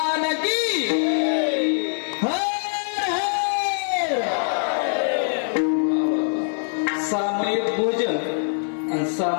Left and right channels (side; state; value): right; silent; digital silence